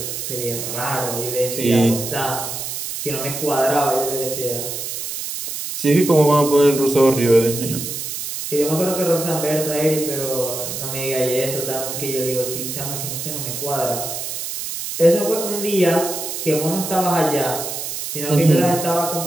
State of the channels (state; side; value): noise; right; hiss, 5 dB below the sound